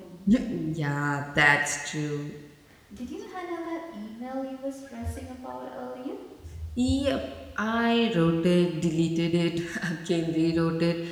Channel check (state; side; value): identical; both; correlation 1.00